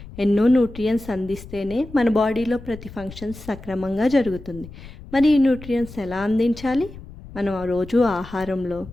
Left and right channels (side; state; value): left; noise; rumble, 16 dB below the sound